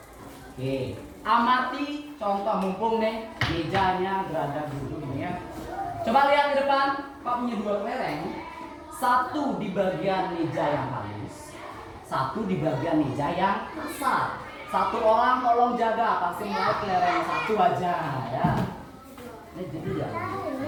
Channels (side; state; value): both; identical; correlation 1.00